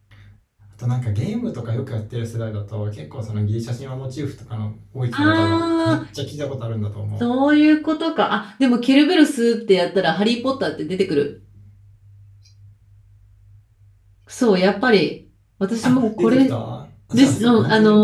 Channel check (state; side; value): identical; both; correlation 1.00